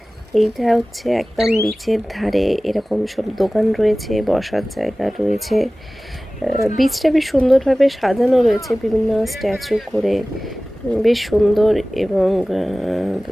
এইটা হচ্ছে একদম বিচের ধারে এরকম সব দোকান রয়েছে, বসার জায়গা রয়েছে। বিচটা বেশ সুন্দরভাবে সাজানো রয়েছে বিভিন্ন স্ট্যাচু করে, বেশ সুন্দর। এবং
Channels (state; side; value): normal; both; correlation 0.98